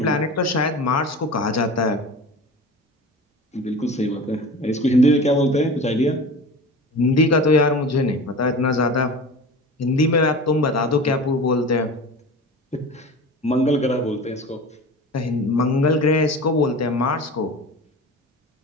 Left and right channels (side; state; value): both; normal; correlation 0.34